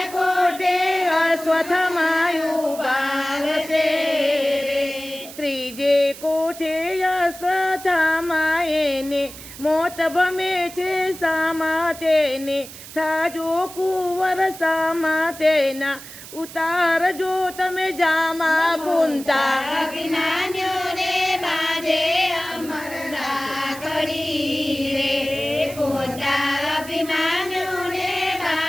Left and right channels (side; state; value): right; noise; hiss, 15 dB below the sound